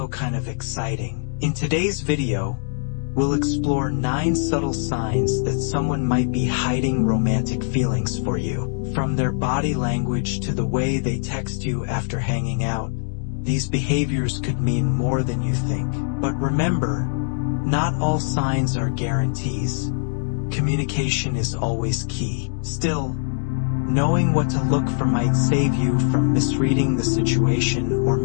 kind of exciting. In today's video, we'll explore 9 subtle signs that someone might be hiding romantic feelings for you. From their body language to the way they text you after hanging out, these behaviors could mean more than you think. But remember, not all signs are guarantees. Communication is always key. Still, knowing what to look for might save you from misreading the situation or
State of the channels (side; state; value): right; silent; 64 dB below the other